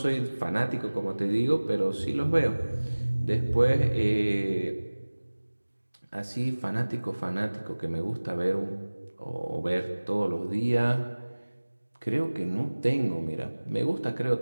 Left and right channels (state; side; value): inverted; both; correlation -1.00